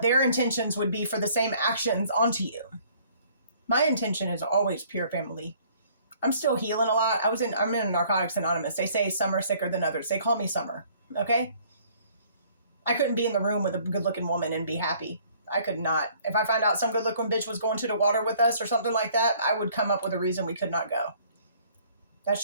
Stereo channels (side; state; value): both; inverted; correlation -0.58